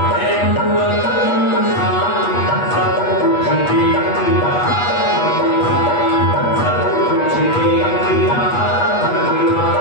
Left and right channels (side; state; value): right; late; 8.3 ms